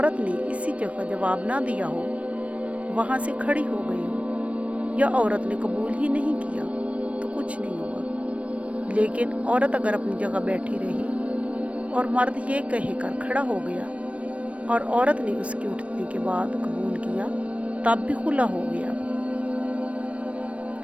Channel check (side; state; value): left; late; 0.064 ms